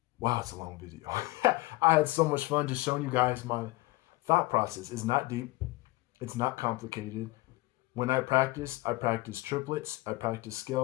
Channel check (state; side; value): quieter; right; 21.1 dB